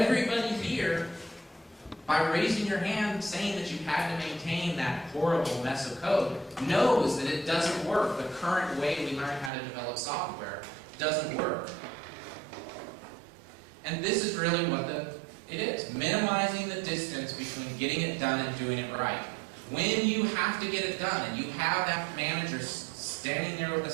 here, by raising your hand saying that you've had to maintain that horrible mess of code, knows that it doesn't work. The current way we learn how to develop software doesn't work. And this is really what it is. Minimizing the distance between getting it done and doing it right. When you have to get it done and you have that manager standing there with a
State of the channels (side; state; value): left; drops out; at 9.5 s